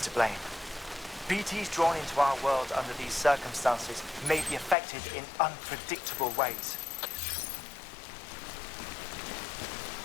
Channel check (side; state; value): right; drops out; at 4.8 s